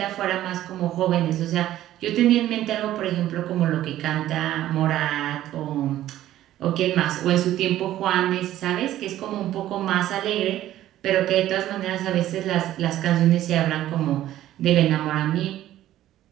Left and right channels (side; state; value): left; quieter; 13.4 dB